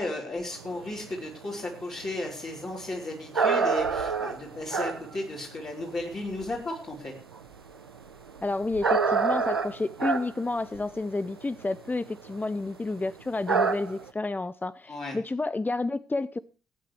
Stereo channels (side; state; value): both; normal; correlation 0.67